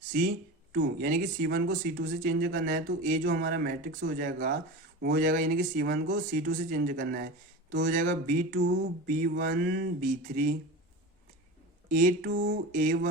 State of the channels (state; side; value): normal; both; correlation 0.29